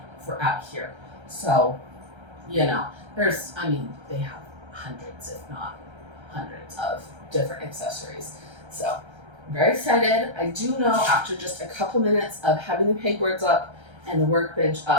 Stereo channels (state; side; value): late; left; 1.3 ms